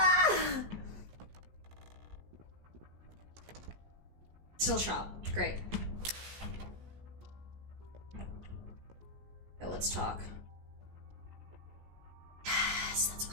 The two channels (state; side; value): late; left; 17 ms